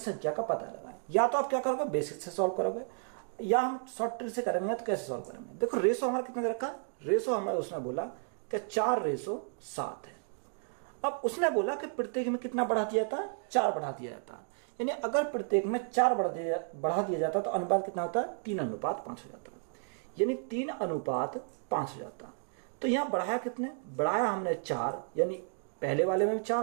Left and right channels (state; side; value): silent; left; 56 dB below the other